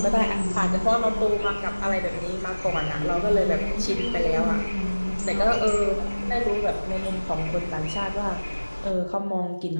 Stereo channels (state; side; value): inverted; both; correlation -1.00